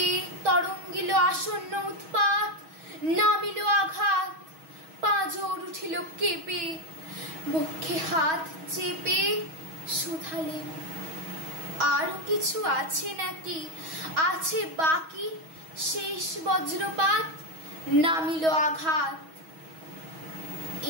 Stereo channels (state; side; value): late; left; 6.3 ms